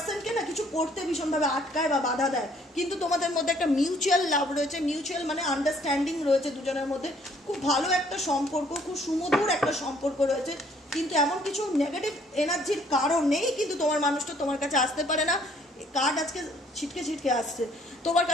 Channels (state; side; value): normal; both; correlation 0.62